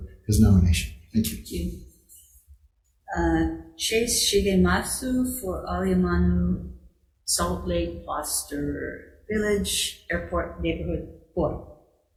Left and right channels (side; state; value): both; identical; correlation 1.00